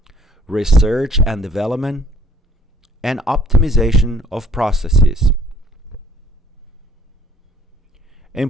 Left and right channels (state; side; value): normal; both; correlation 0.58